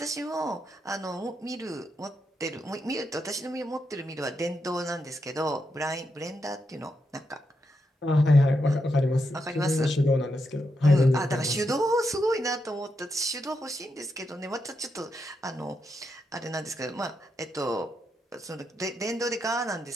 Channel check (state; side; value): normal; both; correlation 0.83